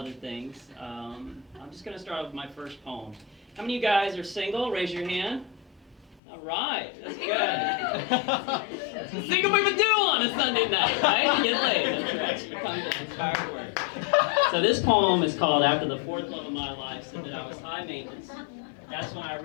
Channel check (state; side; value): drops out; right; at 6.2 s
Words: things. I'm just going to start with my first poem. How many of you guys are single? Raise your hand. All right, that's good. Single people do on a Sunday night, right? You get laid. That's right. You come to inspired words. So this poem is called "After the Fourth Love of My Life Said That I Was High Maintenance." That's when I